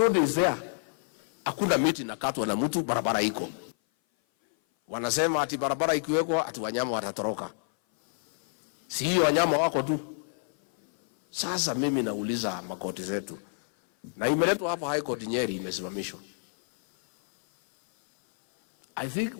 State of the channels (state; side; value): silent; right; 57 dB below the other